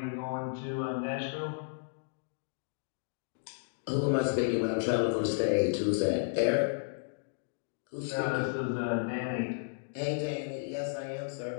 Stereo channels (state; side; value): silent; right; digital silence